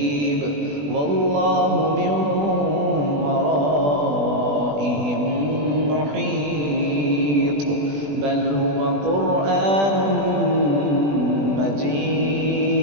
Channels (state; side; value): late; left; 20 ms